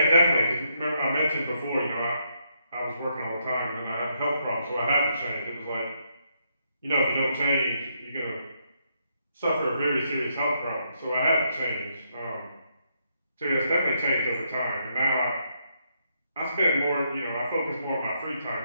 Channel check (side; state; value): both; inverted; correlation -0.76